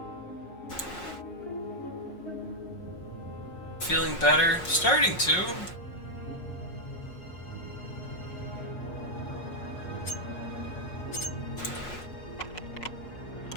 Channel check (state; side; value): late; right; 5.5 ms